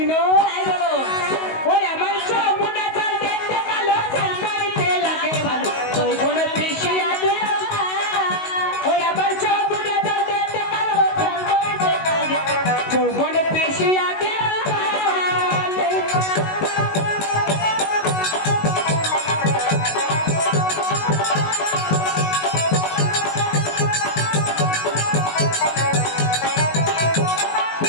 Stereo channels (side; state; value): right; late; 19 ms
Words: তাই বলো। ওই আমার যমুনা জল দেখতে কালো, চান করিতে লাগে ভালো, যৌবনে তৃষে আছে। ওই আমার যমুনা জল দেখতে কালো, চান করিতে লাগে, যৌবনে তৃষে আছে।